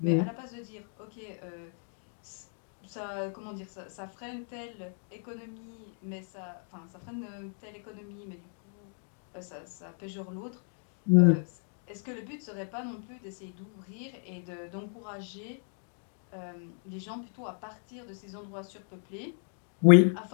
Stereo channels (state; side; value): silent; right; 55 dB below the other